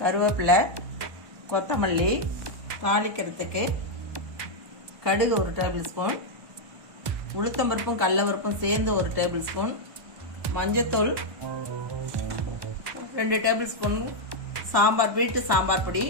கருவேப்பிலை, கொத்தமல்லி, தாளிக்கிறதுக்கு கடுகு 1 டேபிள் ஸ்பூன், உளுத்தம்பருப்பும் கடலப்பருப்பும் சேர்ந்து 1 டேபிள் ஸ்பூன், மஞ்சத்தூள் 2 டேபிள் ஸ்பூன், சாம்பார் வீட்டு சாம்பார் பொடி,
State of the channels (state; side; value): late; left; 1.1 ms